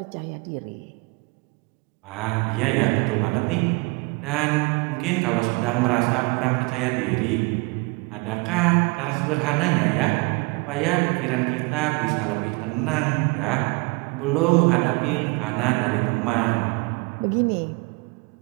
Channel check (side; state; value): left; quieter; 27.8 dB